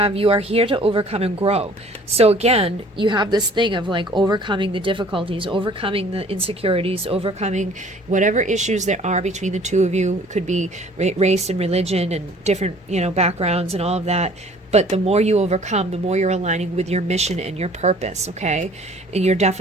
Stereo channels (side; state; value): both; normal; correlation 0.53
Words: you are here to overcome and grow. So again, you have this thing of like overcoming the difficulties, overcoming the insecurities, overcoming whatever issues there are between the two of you. It could be race and religion and different, backgrounds and all of that. But the more you overcome, the more you're aligning with your mission and your purpose, okay? And you're